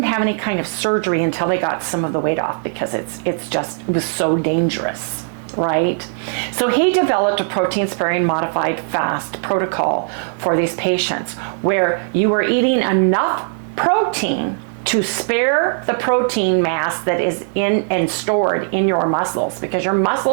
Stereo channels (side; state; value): left; silent; digital silence